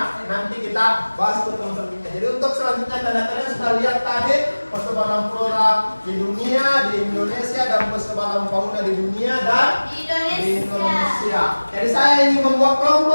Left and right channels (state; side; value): inverted; both; correlation -1.00